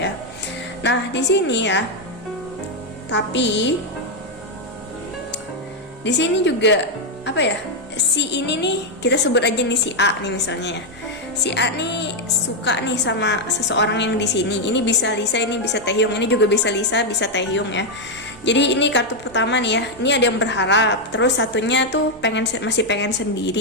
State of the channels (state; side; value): normal; both; correlation 0.02